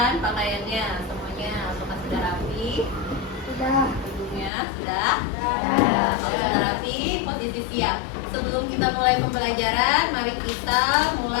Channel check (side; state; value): right; drops out; at 4.5 s